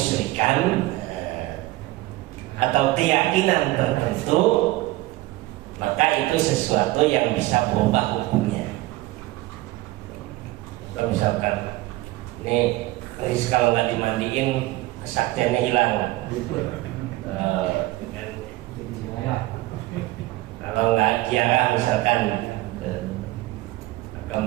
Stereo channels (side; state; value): left; quieter; 18.1 dB